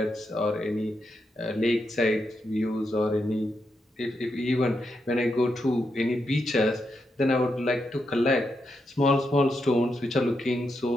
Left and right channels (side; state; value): both; normal; correlation 0.83